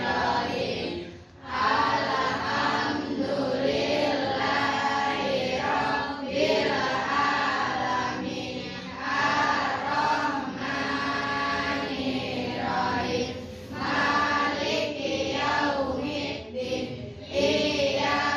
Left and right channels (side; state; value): both; identical; correlation 1.00